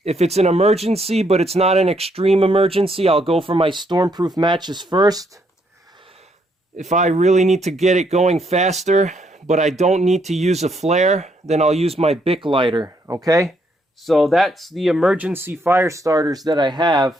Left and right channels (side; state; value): both; normal; correlation 0.73